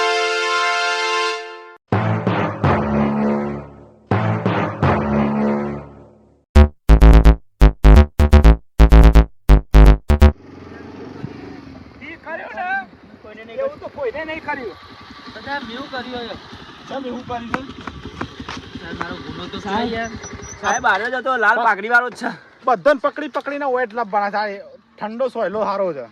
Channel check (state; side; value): identical; both; correlation 1.00